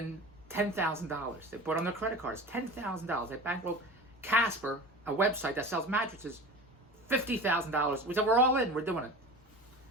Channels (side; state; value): both; normal; correlation 0.34